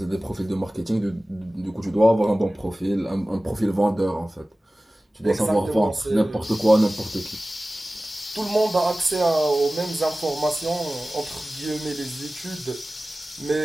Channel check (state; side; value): normal; both; correlation 0.97